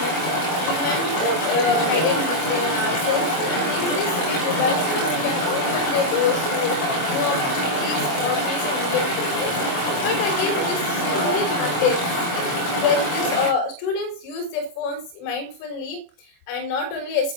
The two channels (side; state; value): right; late; 24 ms